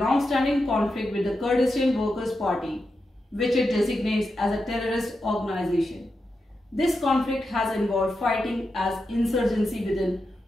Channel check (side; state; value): both; normal; correlation 0.88